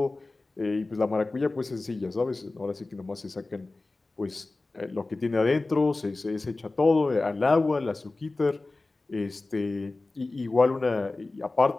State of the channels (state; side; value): quieter; right; 3.2 dB